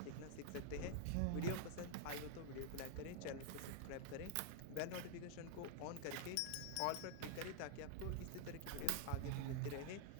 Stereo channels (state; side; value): different; both; correlation -0.01